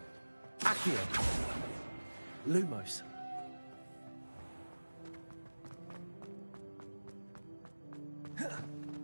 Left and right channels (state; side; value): inverted; both; correlation -1.00